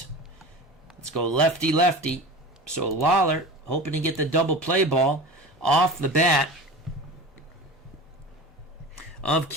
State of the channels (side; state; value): both; normal; correlation 0.33